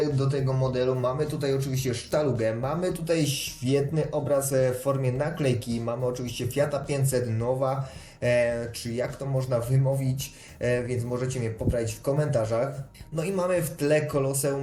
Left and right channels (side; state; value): both; identical; correlation 1.00